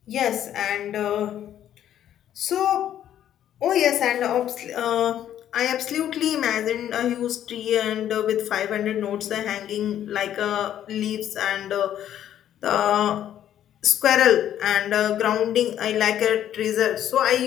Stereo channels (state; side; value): quieter; right; 10.9 dB